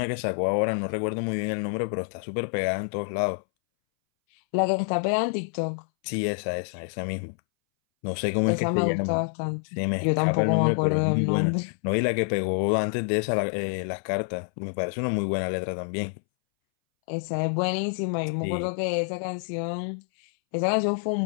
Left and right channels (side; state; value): right; silent; 60 dB below the other